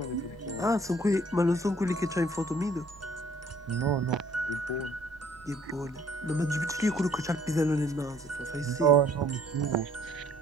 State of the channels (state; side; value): noise; right; rumble, 25 dB below the sound